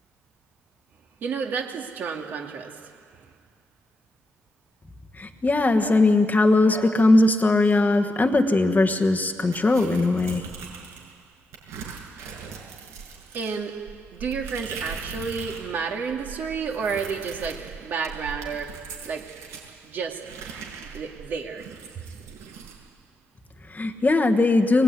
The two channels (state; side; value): normal; both; correlation 0.84